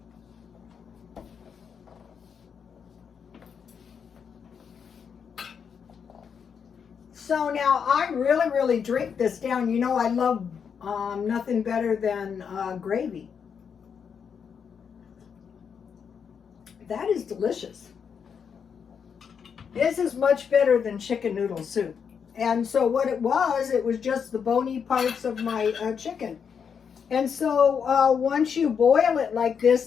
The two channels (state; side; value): quieter; right; 6.9 dB